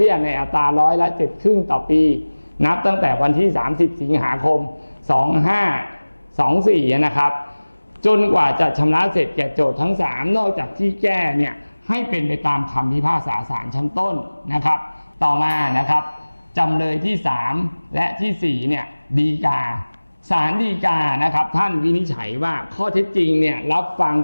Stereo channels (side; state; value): both; inverted; correlation -1.00